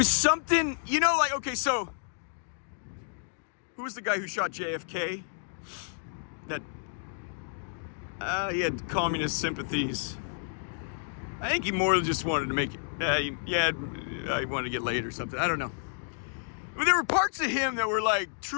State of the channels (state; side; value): silent; right; digital silence